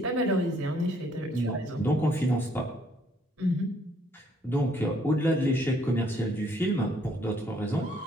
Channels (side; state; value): both; normal; correlation 0.66